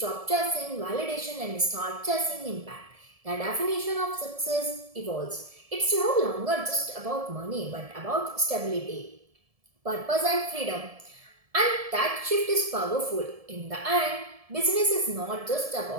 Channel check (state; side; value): late; left; 1.7 ms